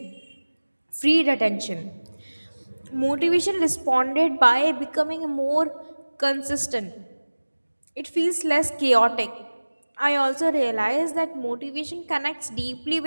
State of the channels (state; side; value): inverted; both; correlation -1.00